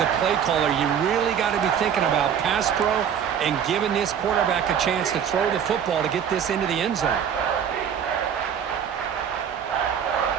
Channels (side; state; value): left; quieter; 8.3 dB